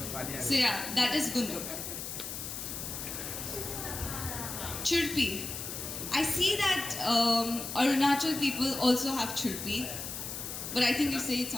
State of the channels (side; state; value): left; noise; hiss, 7 dB below the sound